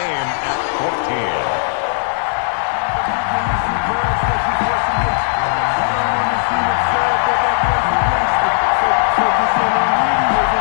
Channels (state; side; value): silent; right; 68 dB below the other